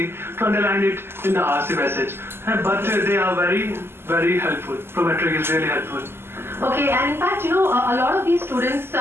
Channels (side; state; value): left; late; 0.12 ms